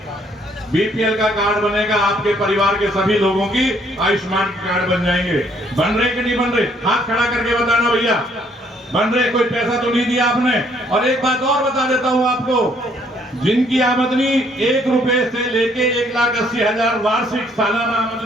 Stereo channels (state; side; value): normal; both; correlation 0.66